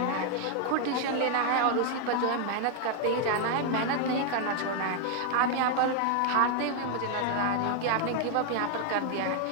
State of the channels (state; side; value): different; both; correlation 0.00